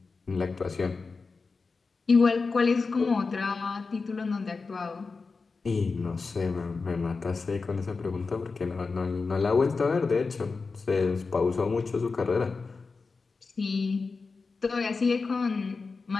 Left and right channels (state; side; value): quieter; right; 4.3 dB